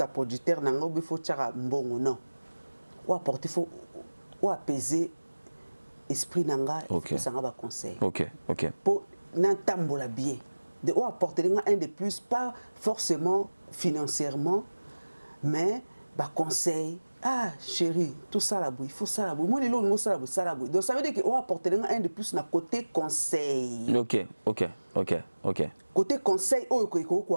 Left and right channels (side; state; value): both; inverted; correlation -1.00